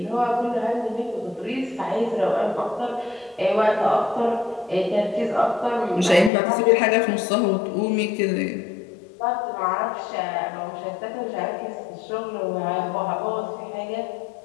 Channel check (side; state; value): right; drops out; at 6.3 s